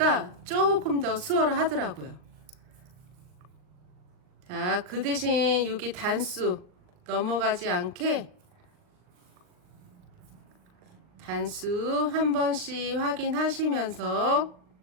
조금 더 수월을 하더라고요. 자, 그 대신 여기 단수 넘어가지 않게 단수 한 번씩 확인하시면서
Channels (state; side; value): late; left; 39 ms